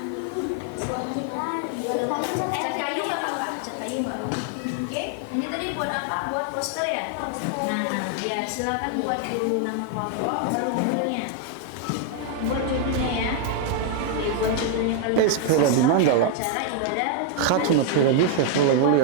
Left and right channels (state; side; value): different; both; correlation 0.00